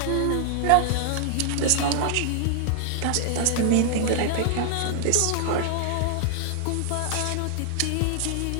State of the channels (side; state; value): both; different; correlation 0.00